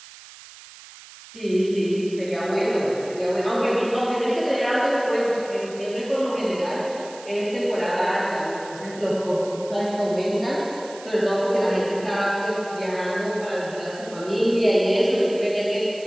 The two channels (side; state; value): right; noise; hiss, 18 dB below the sound